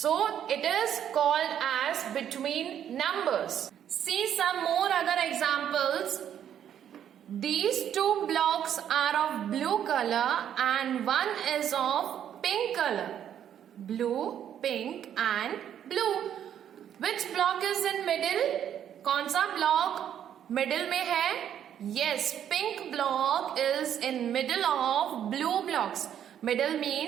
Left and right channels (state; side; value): quieter; left; 9.7 dB